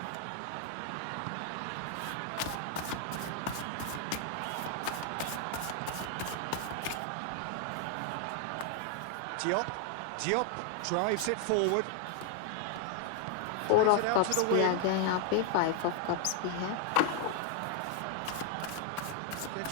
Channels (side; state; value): both; different; correlation 0.00